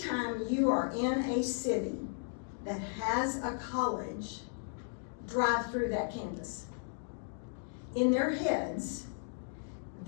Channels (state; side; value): silent; right; digital silence